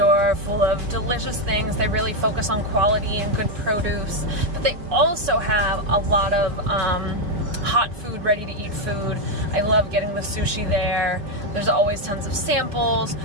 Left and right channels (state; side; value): late; left; 4.9 ms